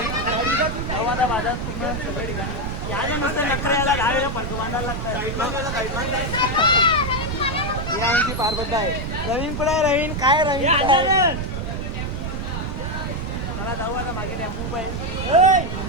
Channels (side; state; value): right; noise; rumble, 4 dB below the sound